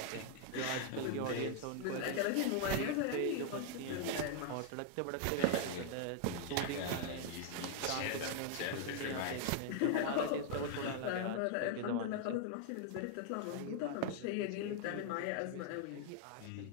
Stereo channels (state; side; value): different; both; correlation 0.00